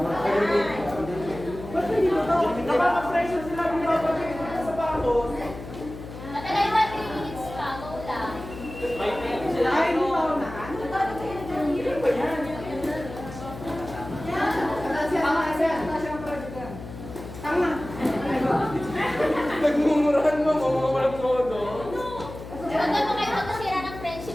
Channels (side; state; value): left; noise; hum, 12 dB below the sound